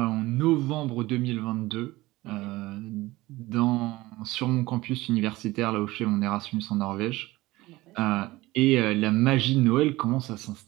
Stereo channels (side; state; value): left; quieter; 19.2 dB